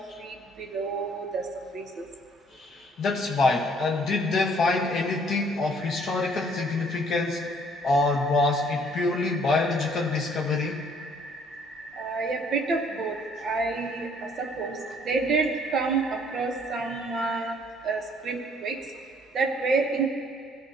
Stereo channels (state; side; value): normal; both; correlation 0.61